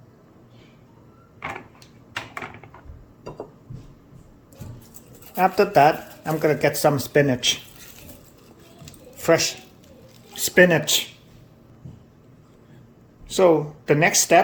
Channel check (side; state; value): both; identical; correlation 1.00